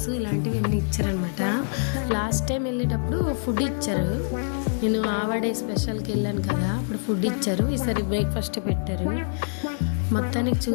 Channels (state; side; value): silent; right; digital silence